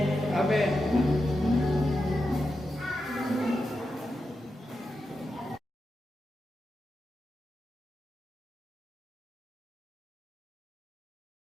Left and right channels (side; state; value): both; normal; correlation 0.89